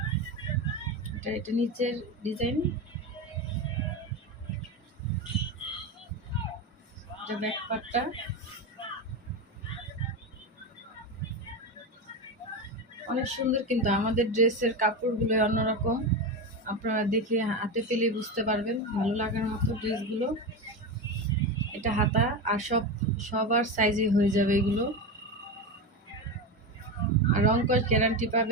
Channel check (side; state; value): both; normal; correlation 0.18